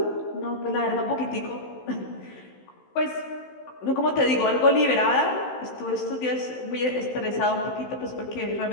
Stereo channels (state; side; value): late; right; 15 ms